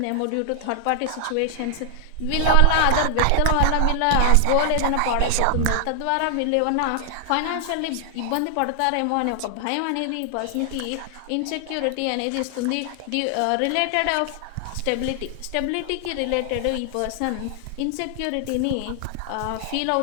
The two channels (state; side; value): different; both; correlation 0.00